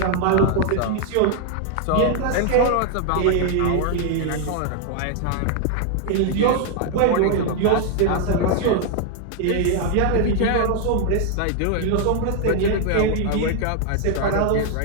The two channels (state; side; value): different; both; correlation 0.00